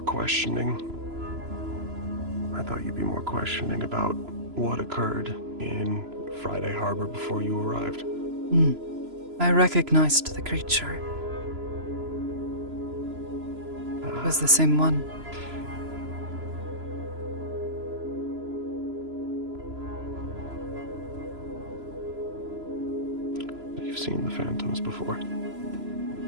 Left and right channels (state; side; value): late; left; 3.0 ms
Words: questioning. I thought you'd be more questioning about what occurred in Friday Harbor before you arrived. I recognized the creature. It was the same one. You've seen the phantoms before.